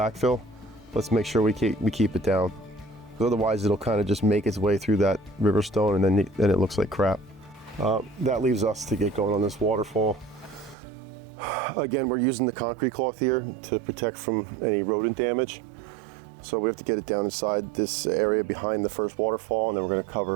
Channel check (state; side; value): drops out; left; at 10.8 s